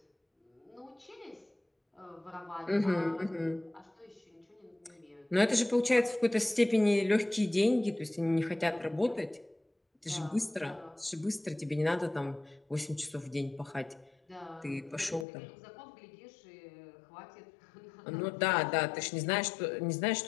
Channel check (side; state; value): right; drops out; at 15.2 s